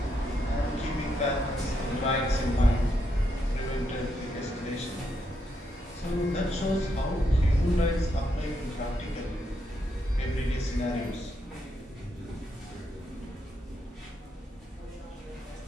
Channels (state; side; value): normal; both; correlation 0.79